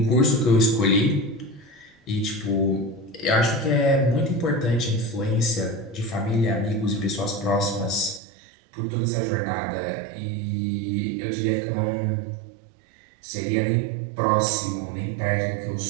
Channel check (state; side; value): drops out; left; at 8.2 s